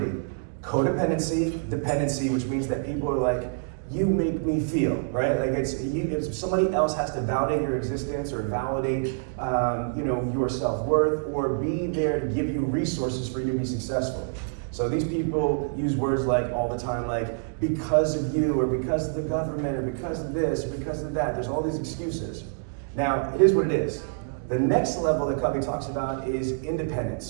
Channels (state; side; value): silent; left; digital silence